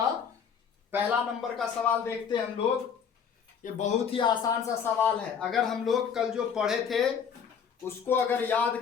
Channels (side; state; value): right; quieter; 7.0 dB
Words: पहला नंबर का सवाल देखते हैं हम लोग। ये बहुत ही आसान सा सवाल है। अगर हम लोग कल जो पढ़े थे उसको अगर याद